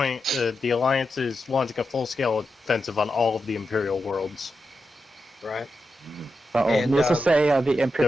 the Alliance is launching a full-scale offensive on all of the Imperial worlds. Right. Let's just say the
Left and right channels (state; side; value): normal; both; correlation 0.88